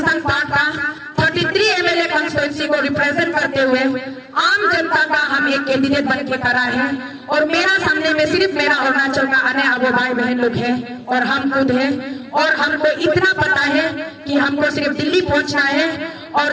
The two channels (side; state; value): both; identical; correlation 1.00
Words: पार्ट का 33 MLA कॉन्स्टिट्यूंसी को रिप्रेजेंट करते हुए आम जनता का हम एक कैंडिडेट बन के खड़ा है, और मेरा सामने में सिर्फ मेरा अरुणाचल का आने वाले भाई बहन लोग हैं और हम खुद हैं, और हमको इतना पता है कि हमको सिर्फ दिल्ली पहुंचना है, और